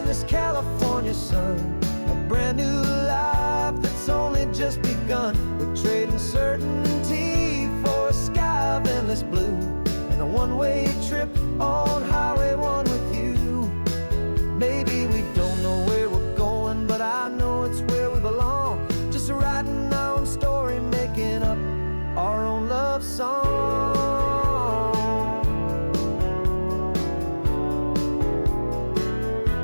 this California sun, a brand new life that's only just begun. We're trading certainty for a sky of endless blue and a one-way trip on Highway 1 with you. Maybe we don't know where we're going, but I know it's where we belong. Just writing our own story, making up our own love song.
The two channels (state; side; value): inverted; both; correlation -1.00